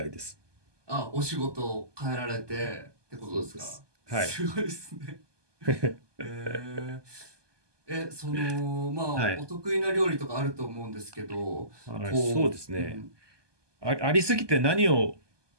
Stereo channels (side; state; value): left; late; 1.2 ms